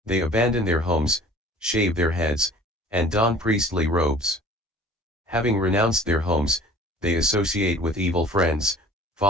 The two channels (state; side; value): normal; both; correlation 0.47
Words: They abandon their homes, shave their heads, and don priestly robes. Having renounced their homes, they associate with evil friends,